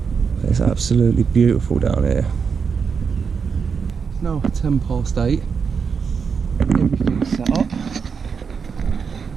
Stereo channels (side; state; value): left; quieter; 6.0 dB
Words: It's absolutely beautiful down here. It's now 8:10. Everything's set up.